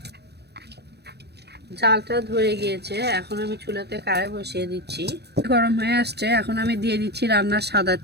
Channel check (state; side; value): late; left; 0.48 ms